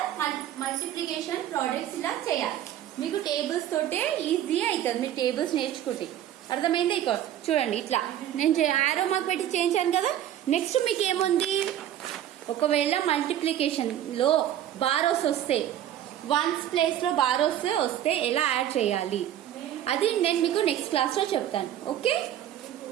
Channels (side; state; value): left; quieter; 11.5 dB